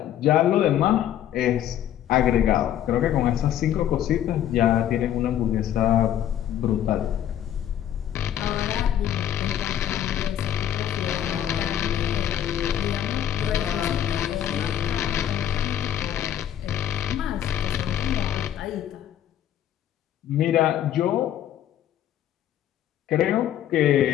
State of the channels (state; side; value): quieter; right; 10.9 dB